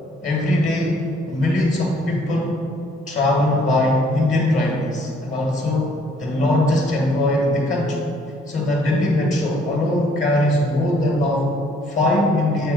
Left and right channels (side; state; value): both; normal; correlation 0.62